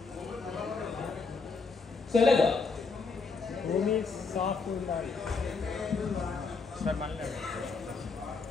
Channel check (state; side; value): quieter; right; 4.5 dB